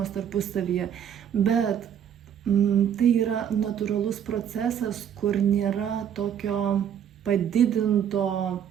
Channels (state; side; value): quieter; left; 8.9 dB